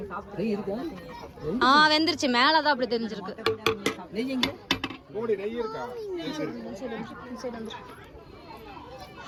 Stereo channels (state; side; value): identical; both; correlation 1.00